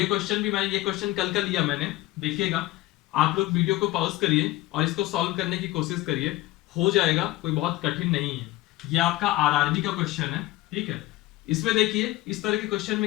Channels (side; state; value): right; quieter; 17.3 dB